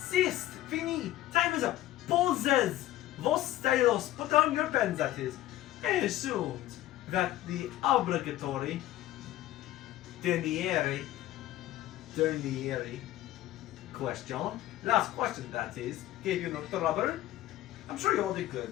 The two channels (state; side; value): quieter; right; 14.8 dB